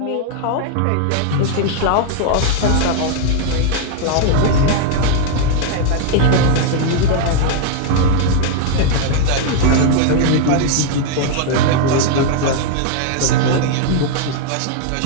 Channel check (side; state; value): both; different; correlation 0.00